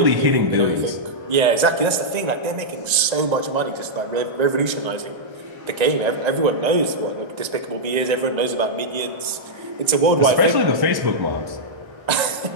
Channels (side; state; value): left; late; 1.3 ms